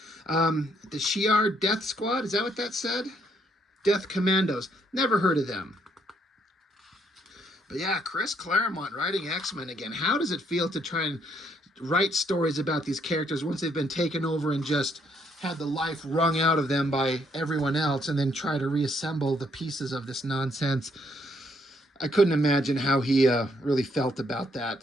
The Shi'ar Death Squad, is that what that said? Death Commandos. Never heard of them. But yeah, Chris Claremont writing X-Men again. How does it feel to try and write stories about these characters once they've been taken over and just had the life wrung out of them by everyone else, and then try to reassemble the pieces of this nonsense? I couldn't imagine how he really felt about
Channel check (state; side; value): normal; both; correlation 0.71